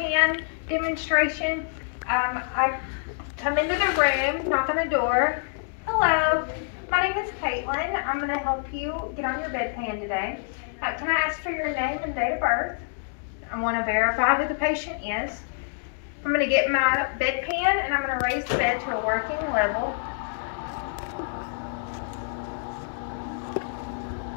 demonstration. I come into the room, knock on the door. Hello, my name is Caitlin. I'm going to help you get on your bedpan today. Can I ask for your name and date of birth? I want to verify who the patient is. I'm going to get my bedpan and I'm going to raise the bed to a working level.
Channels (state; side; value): silent; right; digital silence